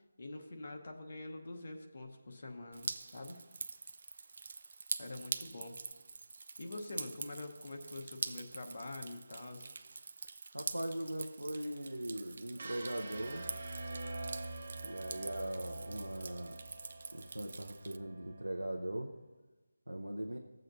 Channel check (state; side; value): inverted; both; correlation -0.95